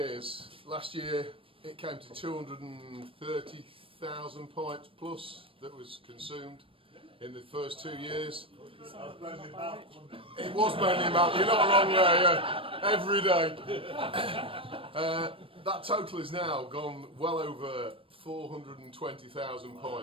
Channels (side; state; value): left; late; 0.26 ms